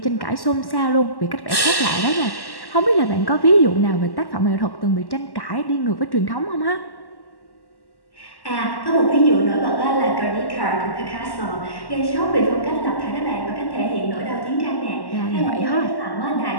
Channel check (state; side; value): late; right; 1.1 ms